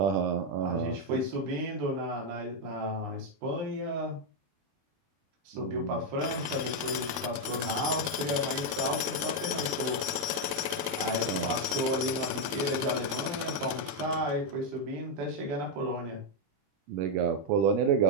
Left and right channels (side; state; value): left; late; 21 ms